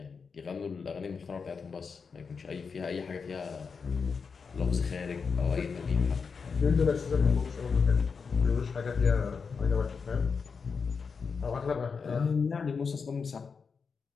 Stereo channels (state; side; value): quieter; right; 5.5 dB